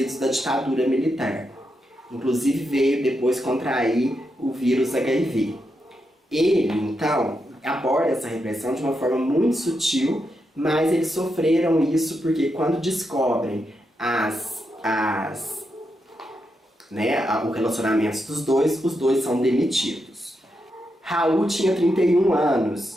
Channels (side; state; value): both; normal; correlation 0.84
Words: da ditadura militar. Inclusive veio depois contrair o vírus HIV. Ele, então, aborda essa repressão de uma forma muito sutil, mas eles sofreram isso porque quando descobrem o relacionamento dos dois, os dois são demitidos. Raul tinha 31